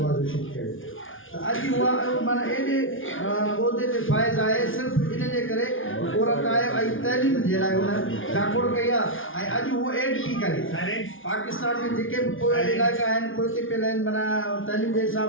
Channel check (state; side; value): late; right; 0.58 ms